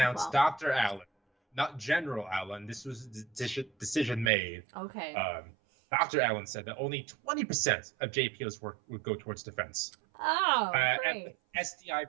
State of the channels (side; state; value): left; drops out; at 4.3 s